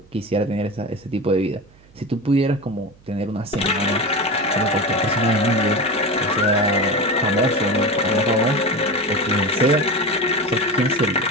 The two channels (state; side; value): noise; right; hum, 28 dB below the sound